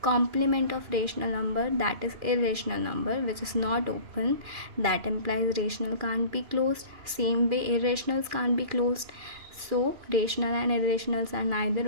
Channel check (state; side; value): late; left; 2.4 ms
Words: complement of rational number, that is irrational number which is not open, that implies rational can't be closed. Same way irrationals can't be closed. So rational and irrationals are neither